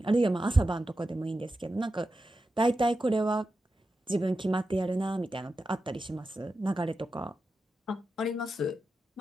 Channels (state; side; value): normal; both; correlation 0.90